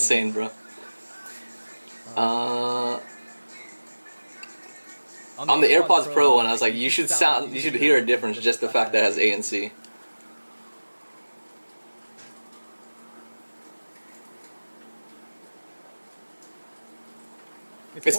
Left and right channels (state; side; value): inverted; both; correlation -1.00